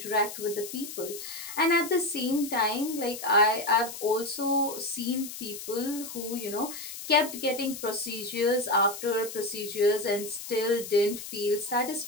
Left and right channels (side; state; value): left; noise; hiss, 10 dB below the sound